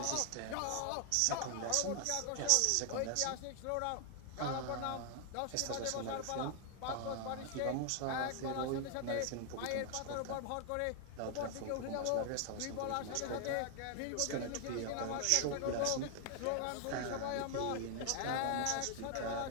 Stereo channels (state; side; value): different; both; correlation 0.00